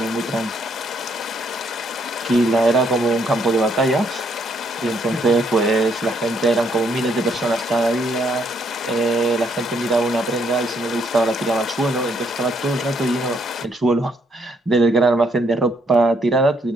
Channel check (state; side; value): normal; both; correlation 0.71